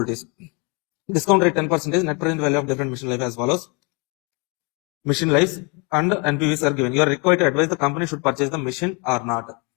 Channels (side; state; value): right; quieter; 31.9 dB